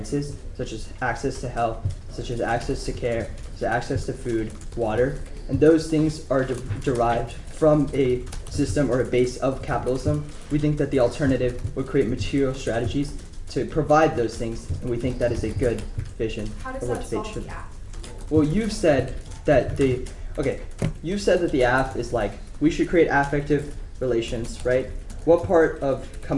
such as access to health, such as access to care, such as access to food, water, and those things are derived from a system or a base of capitalism. We think that the alternative would create material strategies to provide those things, and we think that is a good vision How does for what that debate solve should. the app? Well, you've said that the app is like we should create affective relations, right? What part of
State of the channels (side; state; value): both; identical; correlation 1.00